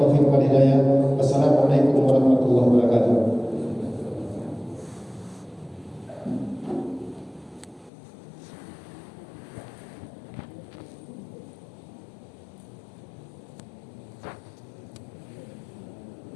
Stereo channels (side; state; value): right; drops out; at 7.9 s